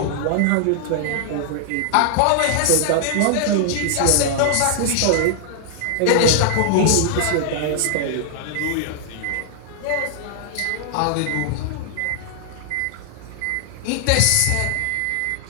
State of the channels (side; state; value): both; different; correlation -0.01